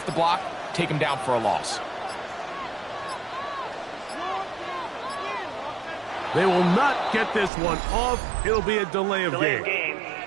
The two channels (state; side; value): drops out; left; at 7.5 s